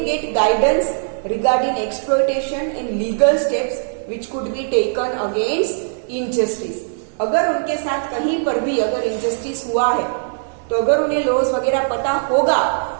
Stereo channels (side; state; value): left; silent; 66 dB below the other